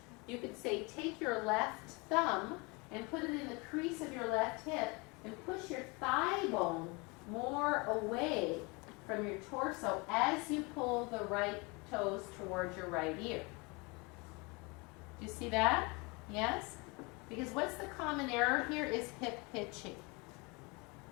you could say, take your left thumb and put it in the crease of your left hip and push your thigh bone more away from your torso as you pull the right toes towards your right ear. Do you see that? Yes? Because what's the common error here is hip hitching.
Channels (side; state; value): right; quieter; 28.0 dB